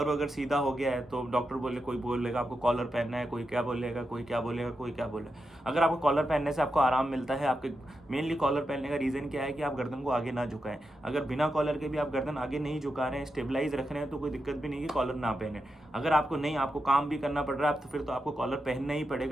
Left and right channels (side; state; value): both; normal; correlation 0.87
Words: अगर सीधा हो गया है तो डॉक्टर बोले, कोई बोलेगा आपको कॉलर पहनना है, कोई क्या बोलेगा, कोई क्या बोलेगा, कोई क्या बोलेगा। अगर आपको कॉलर पहनने से आपको आराम मिलता है, आपके मेनली कॉलर पहनने का रीज़न क्या है कि आप गर्दन को आगे ना झुकाएं। अगर बिना कॉलर के भी आप गर्दन आगे नहीं झुका रहे हैं, स्टेबलाइज रख रहे हैं, तो कोई दिक्कत भी नहीं कि कॉलर ना पहने। अगर आपको नहीं, आपको काम भी करना पड़ रहा है तो फिर तो आपको कॉलर पहनना ही